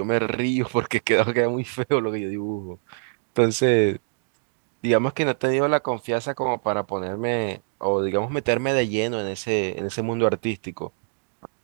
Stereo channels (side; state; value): left; silent; digital silence